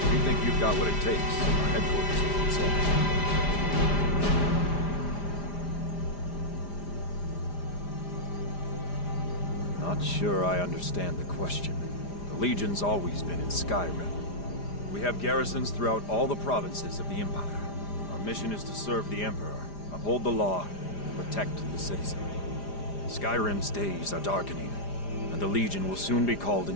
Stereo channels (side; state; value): right; late; 5.0 ms